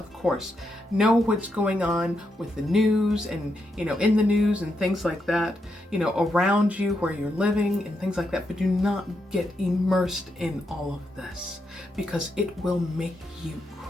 course, know what's going on with the news and, you know, in the news and things like that, you know, around you where you're living and things like that, but do not get immersed in all of this, because it will make you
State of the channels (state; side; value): normal; both; correlation 0.83